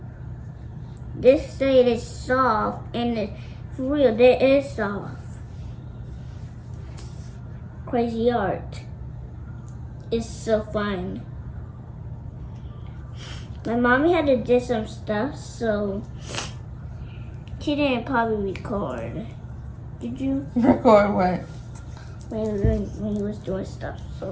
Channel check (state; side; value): identical; both; correlation 1.00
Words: This side is soft, and it's for real, it is soft. crazy art. It's so fun. My mommy had to do some stuff, so she didn't probably record. Did you? Record what? When you was doing stuff,